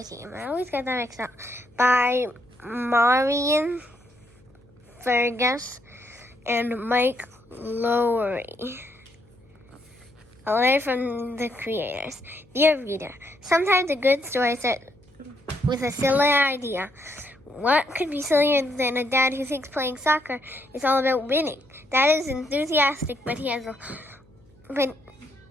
team. I always get that mixed up. By Marian Fergus and Mike Lowry. A letter from the creators. Dear reader, sometimes a good story starts with a silly idea. What could be sillier than a dad who thinks playing soccer is all about winning? Dad is enthusiastic, but he has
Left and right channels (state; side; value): noise; left; hum, 30 dB below the sound